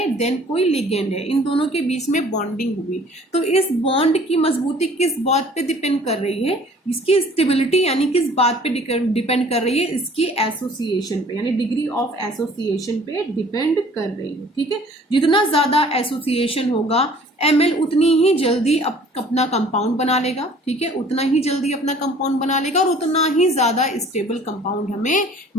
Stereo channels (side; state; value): both; normal; correlation 0.52